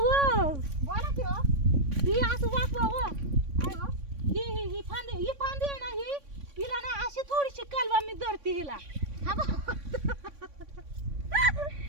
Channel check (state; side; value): late; left; 3.6 ms